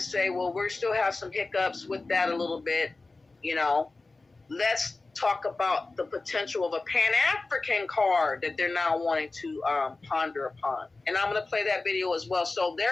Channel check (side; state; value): right; quieter; 3.5 dB